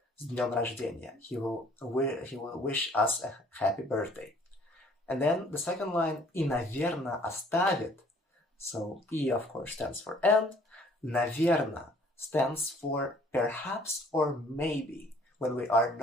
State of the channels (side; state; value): both; normal; correlation 0.58